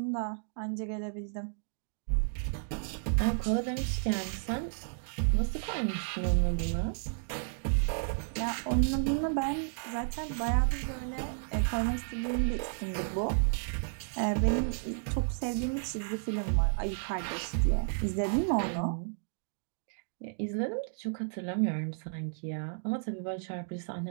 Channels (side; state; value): left; silent; digital silence